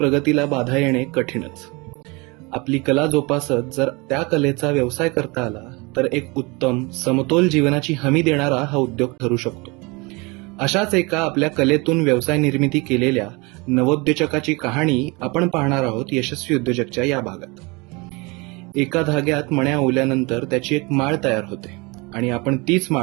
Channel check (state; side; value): quieter; left; 26.8 dB